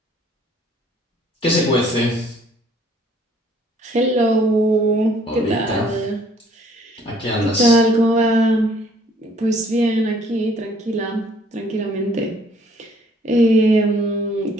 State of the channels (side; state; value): both; normal; correlation 0.60